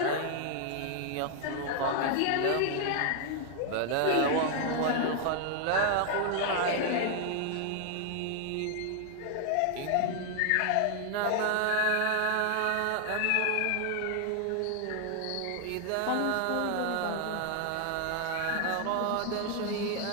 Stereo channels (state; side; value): different; both; correlation 0.00